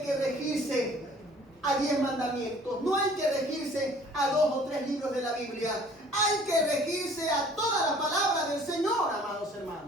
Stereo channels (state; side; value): normal; both; correlation 0.53